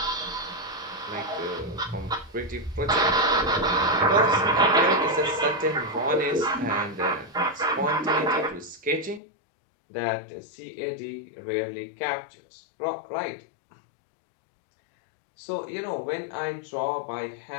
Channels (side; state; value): right; drops out; at 9.2 s